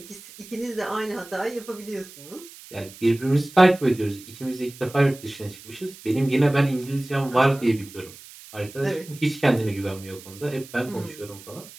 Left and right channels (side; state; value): right; noise; hiss, 18 dB below the sound